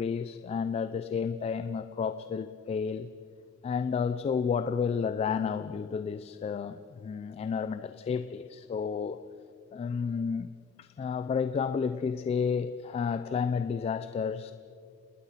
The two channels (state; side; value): quieter; right; 5.8 dB